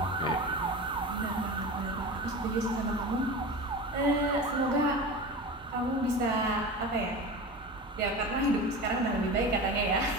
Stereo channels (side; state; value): both; normal; correlation 0.30